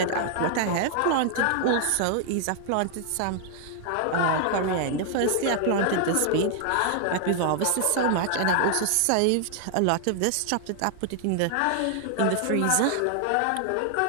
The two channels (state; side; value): different; both; correlation 0.00